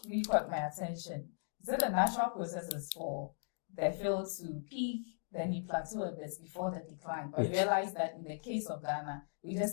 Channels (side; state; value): right; silent; digital silence